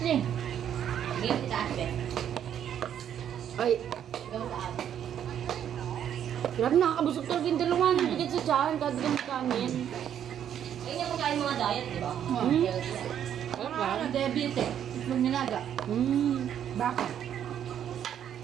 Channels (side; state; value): left; quieter; 9.6 dB